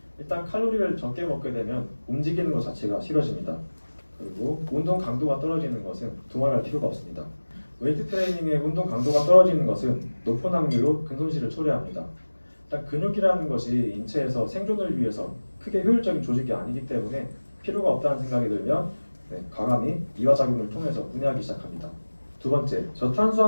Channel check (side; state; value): both; inverted; correlation -1.00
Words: 일단 칼로리를 적게 먹게 되면 움직이는 것 자체가 싫어집니다. 그리고 운동 강도가 떨어지는 것은 두말할 필요가 없습니다. 웨이트 트레이닝의 운동 강도가 떨어지는 것은 높은 확률로 근손실을 초래합니다. 일단 근육이라는 것이 인체에서 생존을 위해서 크게 효율적인 조직이 아니기 때문에 필요가 없다는 생각이 들면 과감히 이화작용을 통해서 분해하기 시작합니다. 두 번째,